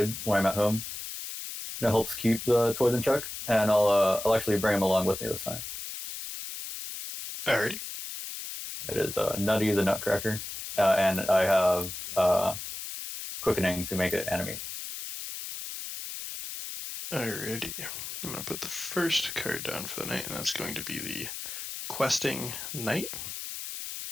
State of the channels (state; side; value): noise; left; hiss, 8 dB below the sound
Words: when I'm at home. That helps keep the toys in check, and I'll actually bring him along with me this time. Alrighty. It is Nutty the Nutcracker, and I have quickening to make it animate. Alrighty. I'm going to put the first card down for the night, and that's going to be the Questing Knight.